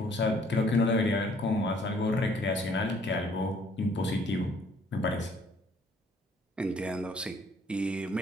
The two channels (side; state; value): both; normal; correlation 0.61